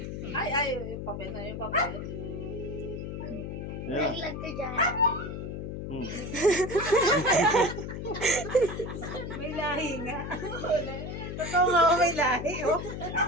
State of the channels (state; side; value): noise; left; hum, 6 dB below the sound